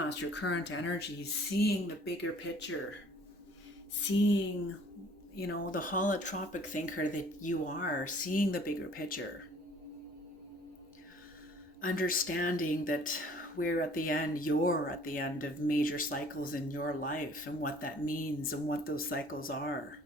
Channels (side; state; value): both; normal; correlation 0.54